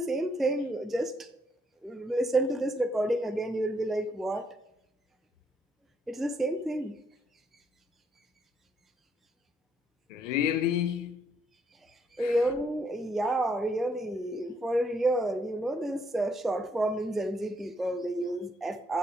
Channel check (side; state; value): both; normal; correlation 0.72